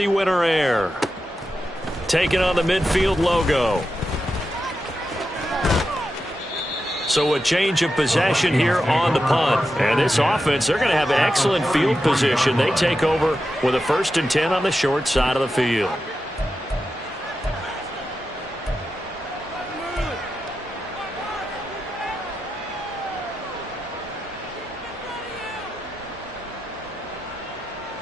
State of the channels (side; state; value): both; normal; correlation 0.89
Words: winter air. Taking on the midfield logo. So a change of possession here on the punt. And this offense, they're going to have an excellent field position. They take over with a 1st and 10 on the short side of the field.